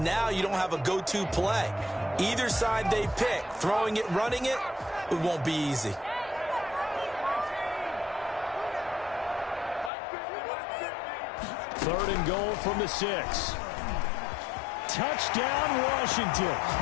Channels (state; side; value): drops out; right; at 9.9 s